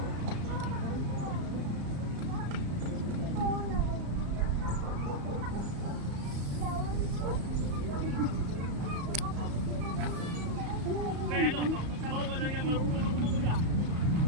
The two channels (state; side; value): late; left; 34 ms